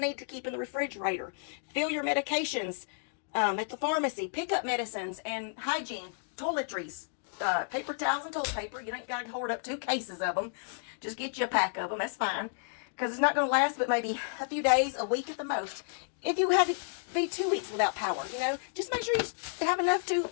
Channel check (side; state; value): right; silent; digital silence